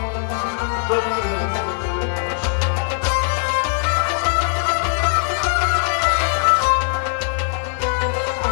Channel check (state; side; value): silent; right; digital silence